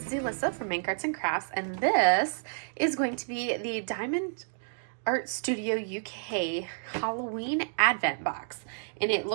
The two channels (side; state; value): left; silent; digital silence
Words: is Alyssa from Mank Arts and Crafts, and this is going to be the Diamond Art Studio UK Halloween Advent Box. And it